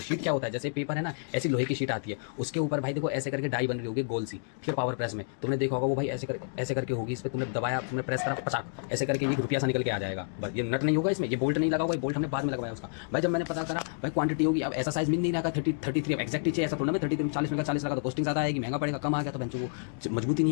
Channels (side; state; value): right; silent; digital silence